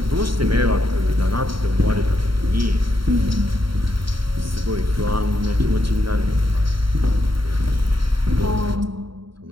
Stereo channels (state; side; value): late; left; 0.74 ms